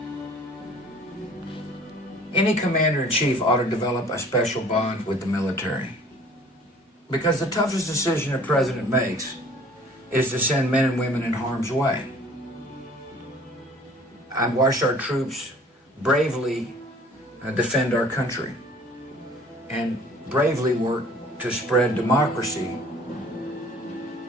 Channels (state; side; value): normal; both; correlation 0.52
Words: Any commander-in-chief ought to develop a special bond with the military. Because the toughest decision a president makes is to send men and women in harm's way. I've watched our troops bravely defend our country and bravely work to spread democracy.